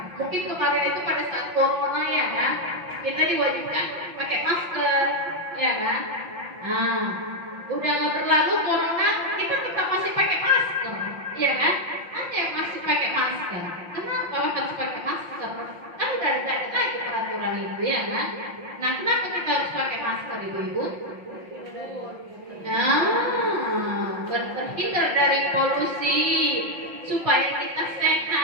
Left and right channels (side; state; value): left; late; 5.8 ms